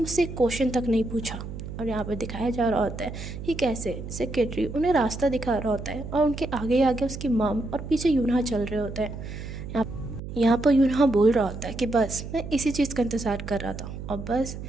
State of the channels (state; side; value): noise; right; hum, 9 dB below the sound